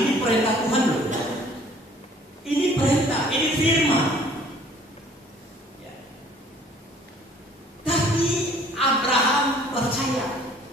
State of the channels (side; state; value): both; normal; correlation 0.55